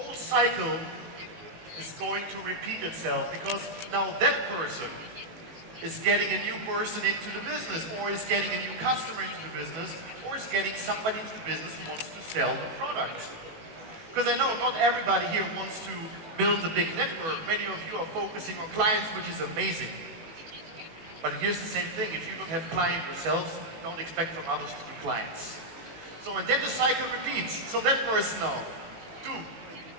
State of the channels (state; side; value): late; left; 19 ms